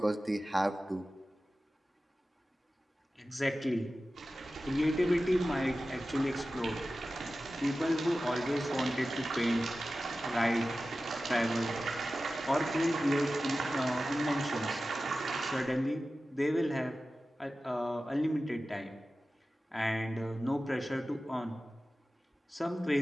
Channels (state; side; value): normal; both; correlation 0.95